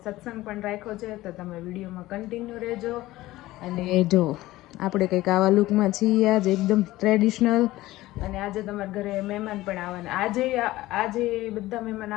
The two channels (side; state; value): right; quieter; 17.2 dB